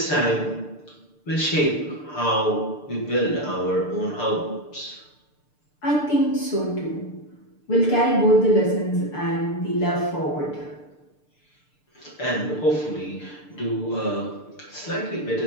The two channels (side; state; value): right; late; 6.7 ms